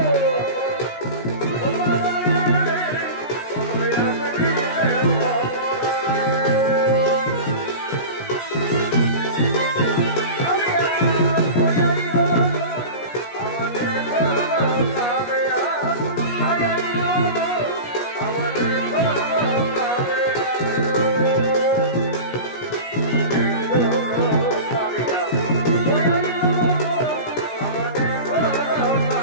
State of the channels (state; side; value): late; right; 17 ms